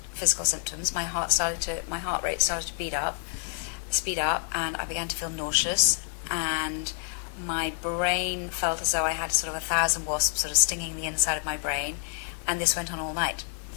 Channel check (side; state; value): right; silent; 59 dB below the other